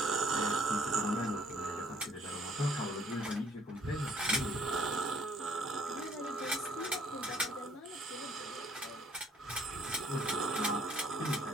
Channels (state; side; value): normal; both; correlation 0.62